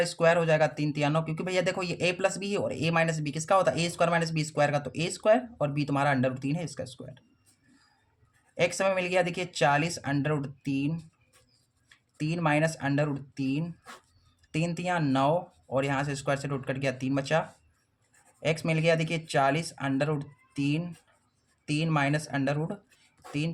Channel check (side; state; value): both; identical; correlation 1.00